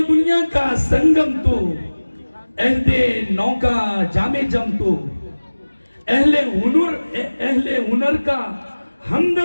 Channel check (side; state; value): both; inverted; correlation -1.00